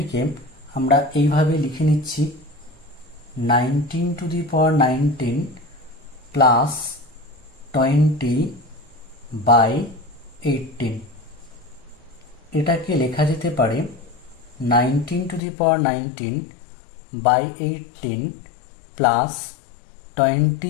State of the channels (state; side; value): drops out; right; at 15.4 s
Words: আমরা এইভাবে লিখে নিচ্ছি, 19⁻19 প্লাস 20/18। এটাকে লেখা যেতে পারে 19⁻19/18 প্লাস